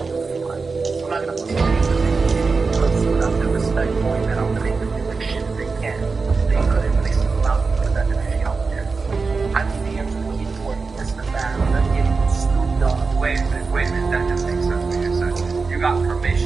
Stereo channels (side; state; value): left; quieter; 4.4 dB